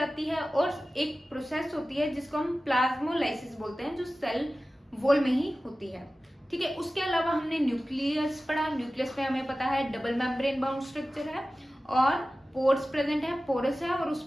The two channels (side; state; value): both; normal; correlation 0.96